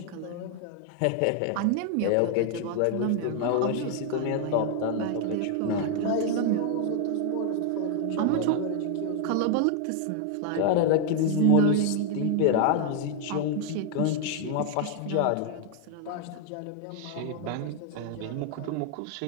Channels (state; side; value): different; both; correlation 0.00